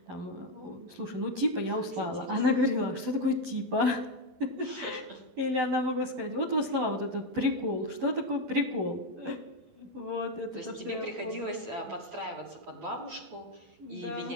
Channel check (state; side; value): late; left; 12 ms